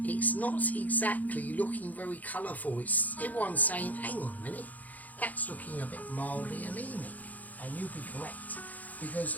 it's not exactly looking very colourful. Everyone's saying, hang on a minute, that's looking a bit mildly anemic. And you'll be correct.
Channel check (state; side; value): late; right; 0.079 ms